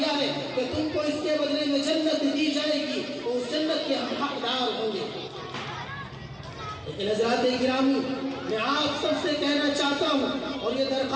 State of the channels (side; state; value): both; identical; correlation 1.00